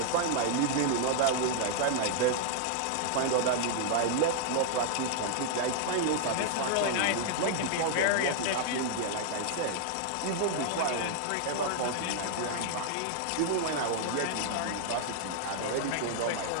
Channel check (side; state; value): both; different; correlation -0.01